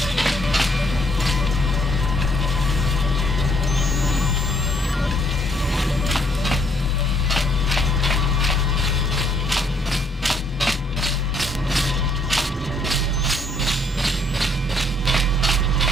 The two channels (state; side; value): normal; both; correlation 0.67